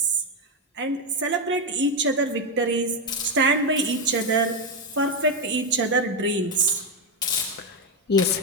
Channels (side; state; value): both; normal; correlation 0.06